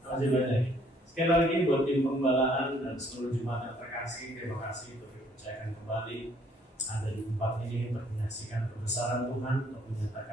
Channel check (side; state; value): both; normal; correlation 0.63